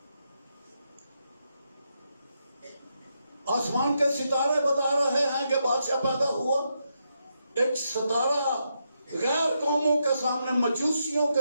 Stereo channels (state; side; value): inverted; both; correlation -0.82